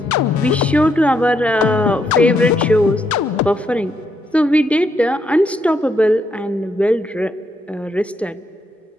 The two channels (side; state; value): both; normal; correlation 0.76